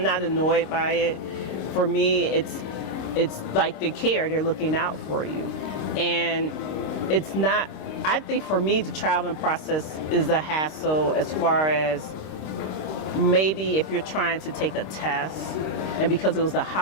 not annoyed by it. For me, it's like they care. They're looking out for you. And it's not, I think for me, the traveling process is a hassle as far as maybe if you're trying to take a test, and because it was the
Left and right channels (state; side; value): late; right; 26 ms